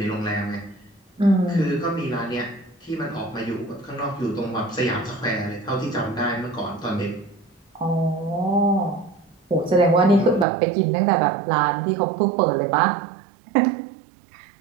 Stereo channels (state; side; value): drops out; left; at 10.5 s